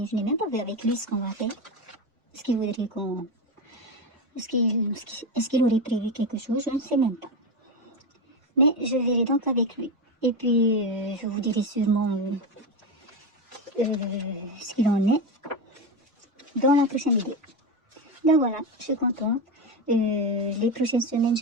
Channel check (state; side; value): normal; both; correlation 0.15